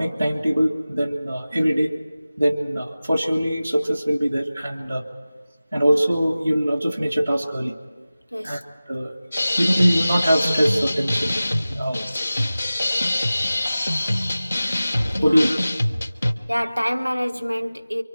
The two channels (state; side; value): inverted; both; correlation -0.97